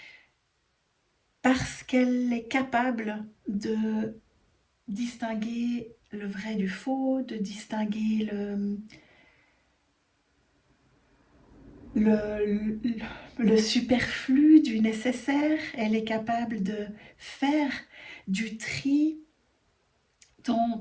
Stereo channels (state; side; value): identical; both; correlation 1.00